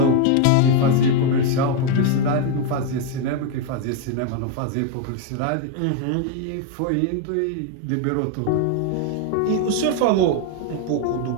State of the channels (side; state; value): both; different; correlation 0.01